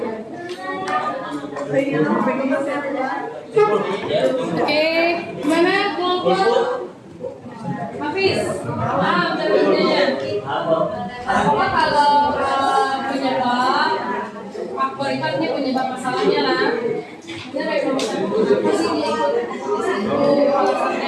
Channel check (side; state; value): both; identical; correlation 1.00